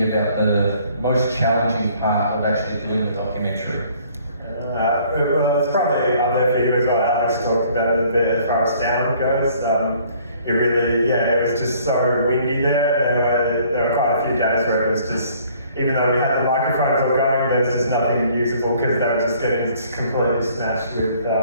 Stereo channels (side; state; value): both; inverted; correlation -0.59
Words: about the most challenging part of actually doing the documentary. Well, it's probably up there for you as well. Alex talked about it a bit as far as sound goes. It really, it was just so windy there. There were quite a few days where it was just, even though we had the microphones all going, there's just nothing usable because they were just getting completely smashed with